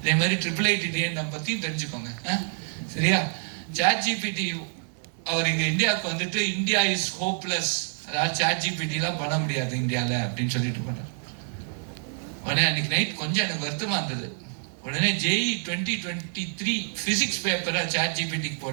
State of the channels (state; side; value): silent; left; 60 dB below the other